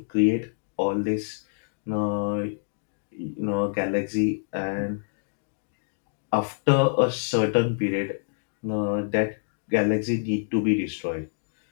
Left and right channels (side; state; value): right; silent; digital silence